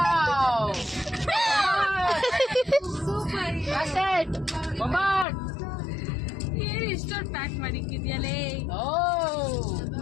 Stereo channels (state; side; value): drops out; right; at 5.2 s